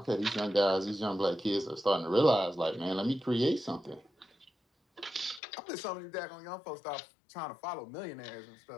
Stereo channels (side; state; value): right; drops out; at 5.4 s